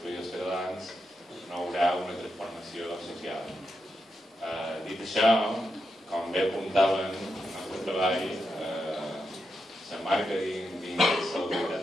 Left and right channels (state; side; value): normal; both; correlation 0.85